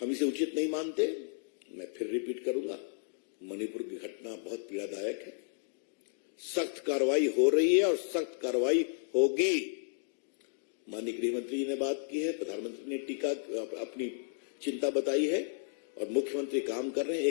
इसे उचित नहीं मानते। मैं फिर रिपीट करूंगा, मणिपुर की घटना बहुत पीड़ादायक है। सख्त कार्रवाई हो रही है और सख्त कार्रवाई होगी। माननीय गृह मंत्री जी ने बात की है, प्रधानमंत्री ने टीका अपनी चिंता बताई है, और मुख्यमंत्री काम कर रहे हैं।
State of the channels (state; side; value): silent; right; digital silence